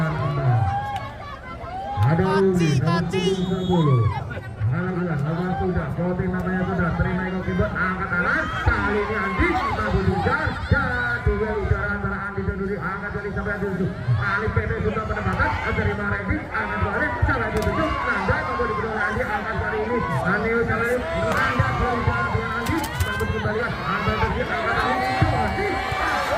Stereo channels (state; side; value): identical; both; correlation 1.00